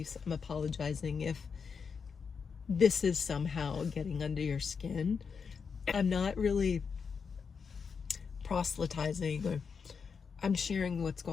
I'm apologizing if this is somehow getting under your skin. I'm not really proselytizing, or I'm sharing what's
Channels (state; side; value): quieter; right; 5.9 dB